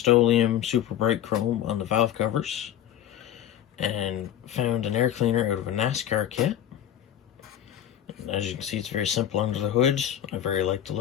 super bright chrome on the valve covers, and found an air cleaner out of a NASCAR kit. And as you can see, it's very simple under the hood. I very like the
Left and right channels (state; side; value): quieter; right; 10.8 dB